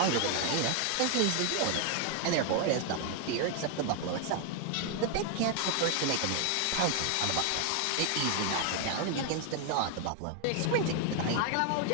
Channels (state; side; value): different; both; correlation 0.01